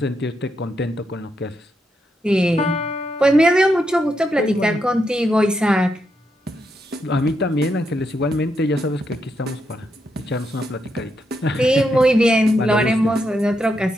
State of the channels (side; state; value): both; normal; correlation 0.81